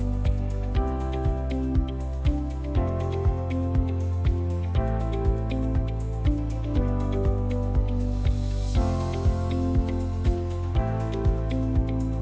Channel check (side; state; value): both; identical; correlation 1.00